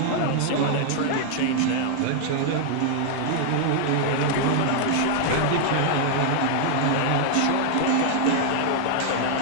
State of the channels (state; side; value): different; both; correlation -0.01